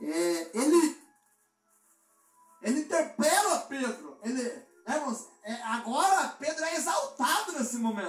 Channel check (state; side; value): identical; both; correlation 1.00